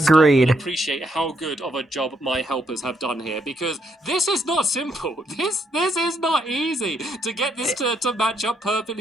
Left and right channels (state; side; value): normal; both; correlation 0.75